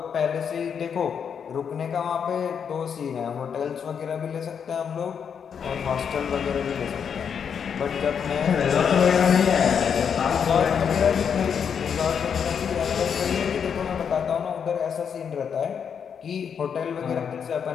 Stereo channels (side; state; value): right; quieter; 7.2 dB